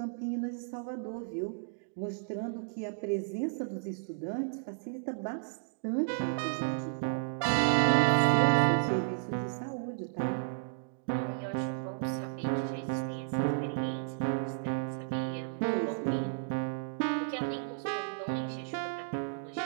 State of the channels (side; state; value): left; silent; digital silence